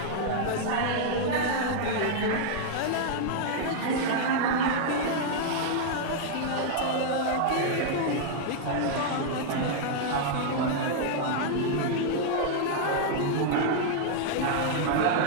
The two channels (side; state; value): both; different; correlation -0.01